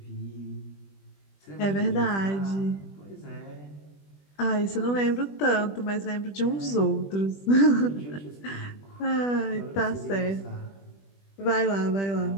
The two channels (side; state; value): right; late; 20 ms